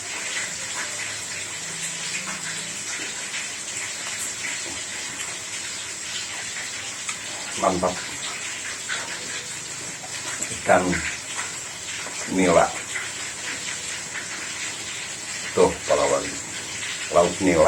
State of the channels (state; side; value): identical; both; correlation 1.00